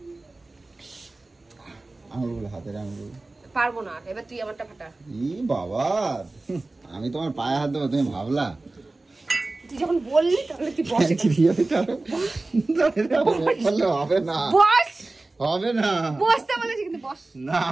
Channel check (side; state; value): left; quieter; 3.1 dB